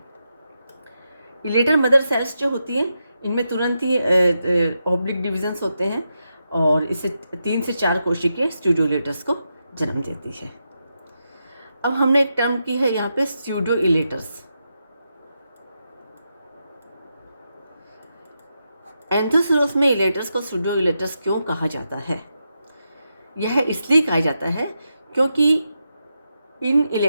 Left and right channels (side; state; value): both; inverted; correlation -0.86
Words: इलेटर मदर सेल्स जो होती हैं इनमें तुरंत ही ऑब्लिक डिविजन्स होते हैं, और इसे 3 से 4 कोशिकाएं स्यूडोइलेटर्स को जन्म देती है। अब हमने एक टर्म की है यहाँ पे स्यूडोइलेटर्स। एंथोसिरोस में इलेटर्स को स्यूडोइलेटर्स क्यों कहा जाता है? यह इसलिए कहा जाता है क्योंकि इन